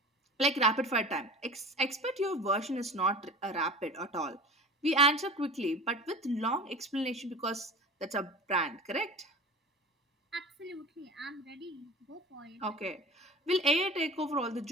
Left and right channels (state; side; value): normal; both; correlation 0.36